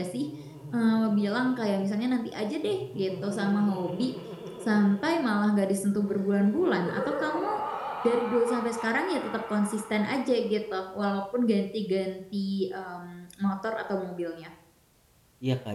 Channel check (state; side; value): identical; both; correlation 1.00